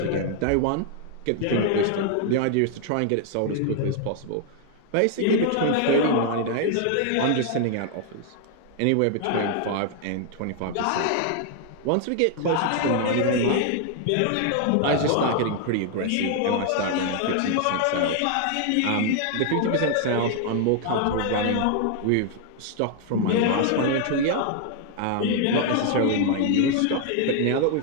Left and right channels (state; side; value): different; both; correlation 0.00